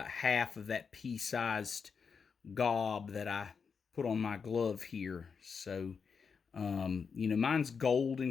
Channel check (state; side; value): quieter; right; 5.8 dB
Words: half of that pea-sized gob that I put on my glove here. So, you know, mine's gold